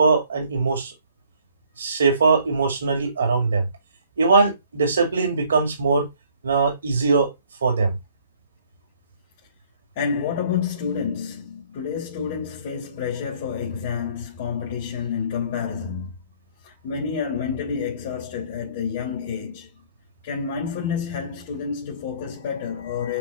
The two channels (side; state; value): both; inverted; correlation -0.60